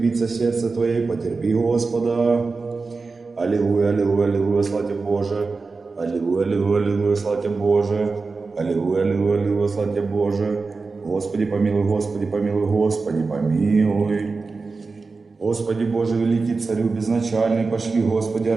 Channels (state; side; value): quieter; left; 4.1 dB